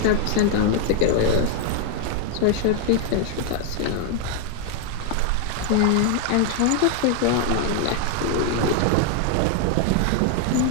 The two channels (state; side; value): different; both; correlation 0.00